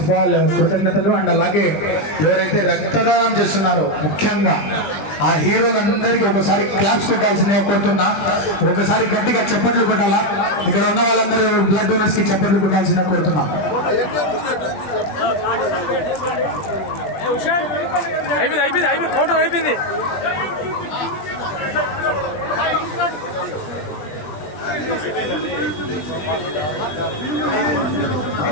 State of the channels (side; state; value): right; late; 20 ms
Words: ఆఫ్ ఆల్ కృతజ్ఞతలు. అండ్ అలాగే ఎవరైతే రక్తదానం చేస్తున్నారో ముఖ్యంగా ఆ హీరోలందరికీ ఒకసారి క్లాప్స్ కొట్టాల్సిందిగా కోరుతున్నా. ఒకసారి గట్టిగా చప్పట్లు కొట్టాలా. ఇక్కడ ఉన్న వాళ్ళందరూ బ్లడ్ డోనర్స్ కి చప్పట్లు కొట్టాల్సిందిగా కోరుతున్నా. అయిపోయింది ఫోటో అయిపోయింది.